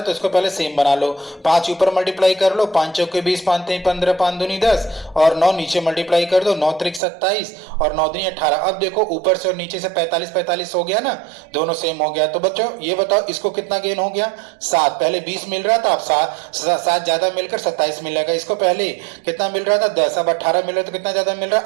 तो इसको पहले सेम बना लो। 5 ऊपर मल्टीप्लाई कर लो, 5 चौके 20, 5 3 15, 5 दूनी 10 और 9 नीचे मल्टीप्लाई कर दो, 9 त्रिक 27 और 9 दूनी 18। अब देखो ऊपर से और नीचे से 45 45 हो गया ना, दोनों सेम हो गया। तो बच्चों ये बताओ इसको कितना गेन हो गया, 7। पहले 20 मिल रहा था, अब 7 ज्यादा मिलकर 27 मिलेगा। इसको पहले कितना मिल रहा था, 10, अब 18 मिल रहा है, तो कितना ज्यादा मिल रहा है,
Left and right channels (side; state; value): left; drops out; at 7.0 s